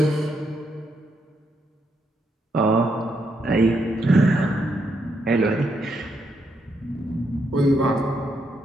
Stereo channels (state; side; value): normal; both; correlation 0.79